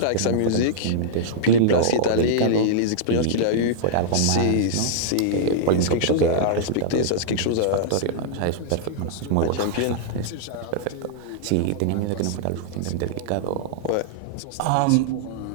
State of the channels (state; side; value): different; both; correlation -0.02